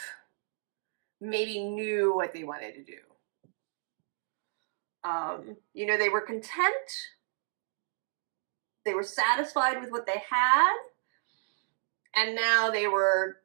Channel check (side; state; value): left; silent; digital silence